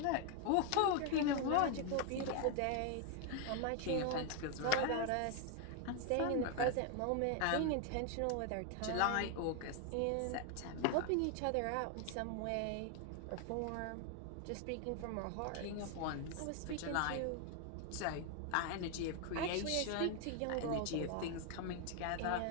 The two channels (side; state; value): both; different; correlation 0.00